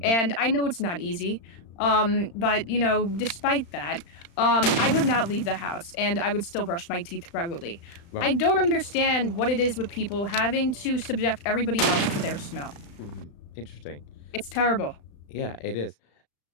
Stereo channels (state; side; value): late; right; 35 ms